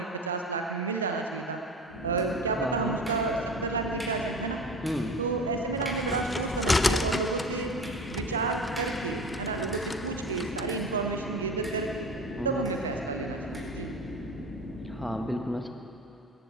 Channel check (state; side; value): normal; both; correlation 0.33